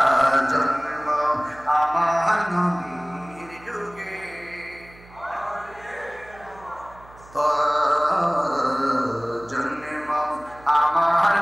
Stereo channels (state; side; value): noise; right; hum, 23 dB below the sound